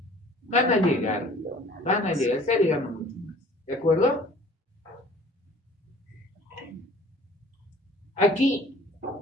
Van a llegar, está llegando mucho más. ¿De acuerdo? Aquí,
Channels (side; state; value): both; normal; correlation 0.50